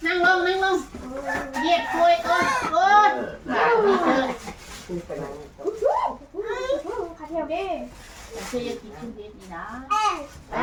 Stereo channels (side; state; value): both; identical; correlation 1.00